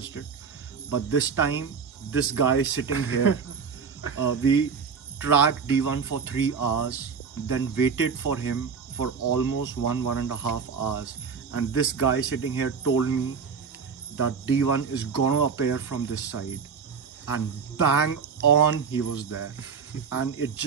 it, but this time this guy sitting here, we tracked D1 for 3 hours, then waited for him for almost 1.5 hours, and this guy sitting here told me that D1 is gonna appear from this side, and bang on he was there. And it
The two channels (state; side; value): quieter; left; 5.8 dB